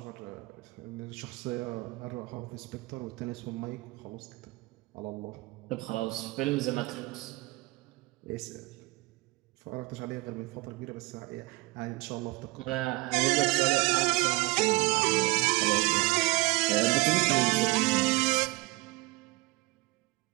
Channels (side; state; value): left; quieter; 22.8 dB